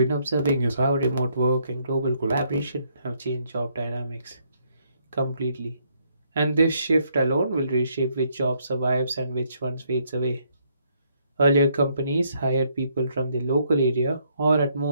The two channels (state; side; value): inverted; both; correlation -0.71